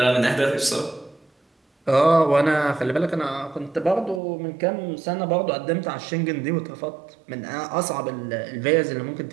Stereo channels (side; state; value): left; drops out; at 4.2 s